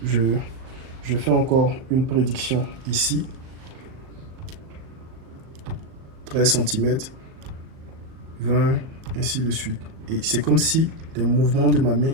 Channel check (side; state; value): left; late; 38 ms